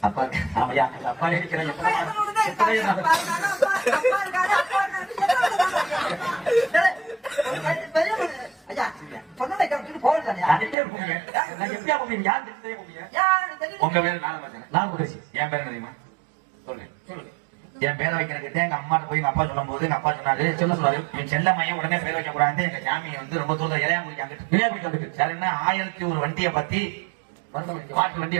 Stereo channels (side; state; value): left; drops out; at 10.8 s